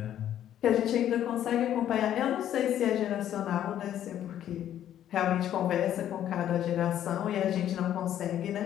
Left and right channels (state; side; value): quieter; right; 11.0 dB